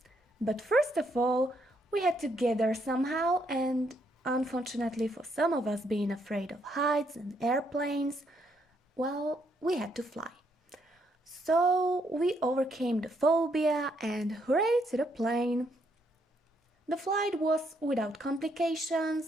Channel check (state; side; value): normal; both; correlation 0.74